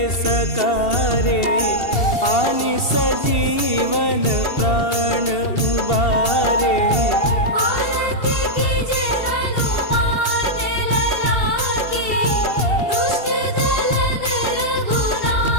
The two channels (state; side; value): late; right; 2.7 ms